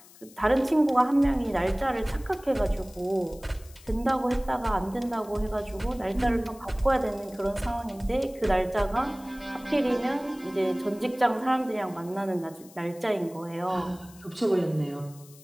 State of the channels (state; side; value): noise; left; hiss, 23 dB below the sound